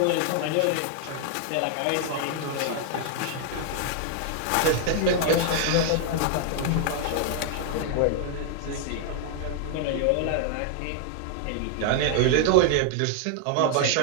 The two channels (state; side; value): different; both; correlation 0.00